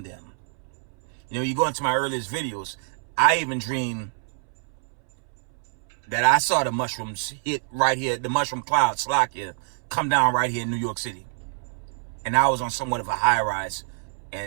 them. You know, you go into my earliest videos, I even dreamed that I saw the mushrooms hit right here, the mushroom cloud, Slovakia, come down right here in New York City. And I was on somewhat of a high rise.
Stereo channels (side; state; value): left; silent; 61 dB below the other